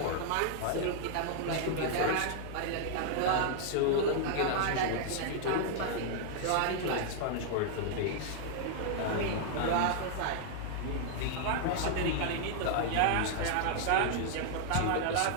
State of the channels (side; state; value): both; different; correlation 0.00